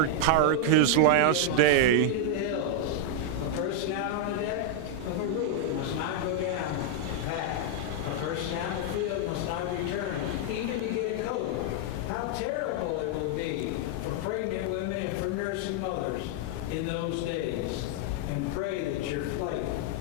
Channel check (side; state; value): both; different; correlation -0.01